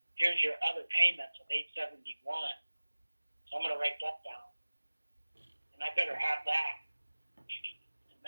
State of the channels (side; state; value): both; inverted; correlation -1.00